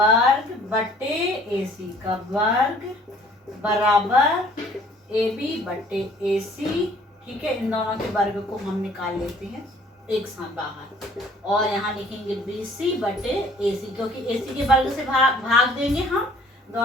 बटे AC का वर्ग बराबर AB बटे AC। ठीक है, इन दोनों के वर्ग को हम निकाल लेते हैं एक साथ बाहर और यहाँ लिखेंगे BC बटे AC, क्योंकि AC के वर्ग से भाग देंगे हम,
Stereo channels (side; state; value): both; normal; correlation 0.56